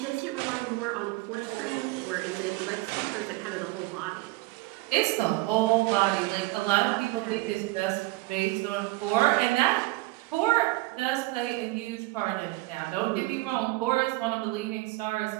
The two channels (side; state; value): left; quieter; 20.7 dB